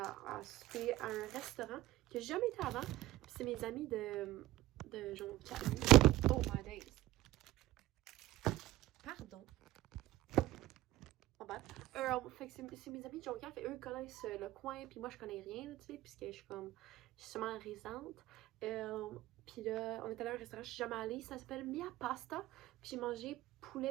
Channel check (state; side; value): quieter; left; 15.8 dB